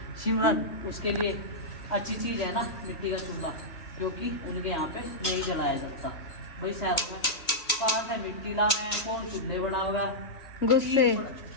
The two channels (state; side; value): late; right; 1.8 ms